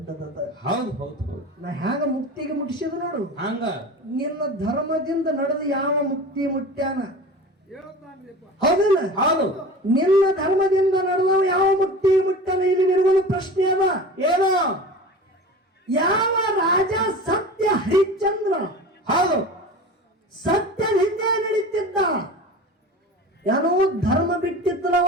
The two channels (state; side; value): normal; both; correlation 0.35